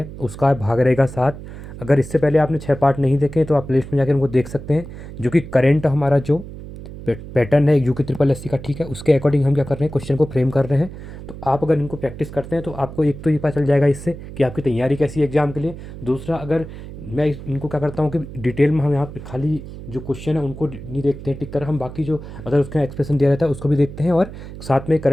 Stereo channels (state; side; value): noise; right; hum, 12 dB below the sound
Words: उसका भाग रहेगा 7। अगर इससे पहले आपने 6 पार्ट नहीं देखे तो आप प्लेलिस्ट में जाकर उनको देख सकते हैं। जो कि करेंट हमारा जो पैटर्न है यूके ट्रिपल एस सी का, ठीक है, उसके अकॉर्डिंग हम क्या कर रहे हैं, क्वेश्चन को फ्रेम कर रहे हैं। तो आप अगर इनको प्रैक्टिस करते हैं तो आपको एक तो ये पता चल जाएगा इससे कि आपकी तैयारी कैसी है एग्जाम के लिए। दूसरा, अगर मैं इनको क्या करता हूँ कि डिटेल में हम यहाँ पे खाली जो क्वेश्चन है उनको नहीं देखते हैं टिक कर, हम बाकी जो अगर उसका एक्सप्रेशन दिया रहता है उसको भी देखते हैं और साथ में